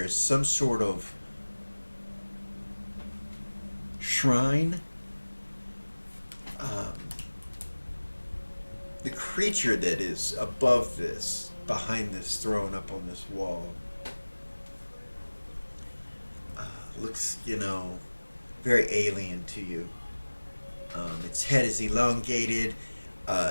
is some sort of shrine. The creature that is above this, behind this throne up on this wall, looks, very alien to you. Its head is elongated.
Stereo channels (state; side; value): inverted; both; correlation -1.00